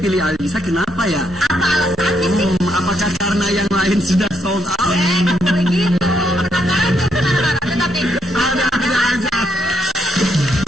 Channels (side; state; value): both; normal; correlation 0.76